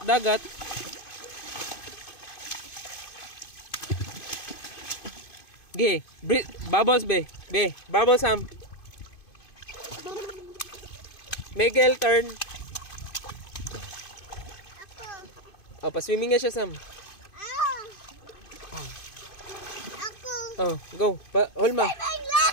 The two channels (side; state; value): right; late; 2.5 ms